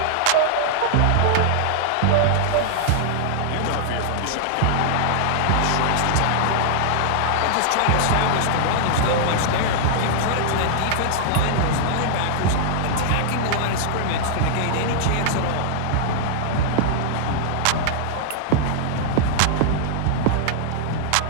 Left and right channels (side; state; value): both; different; correlation -0.01